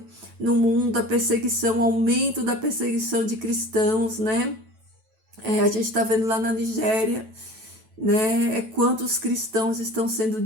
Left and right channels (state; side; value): late; left; 9.1 ms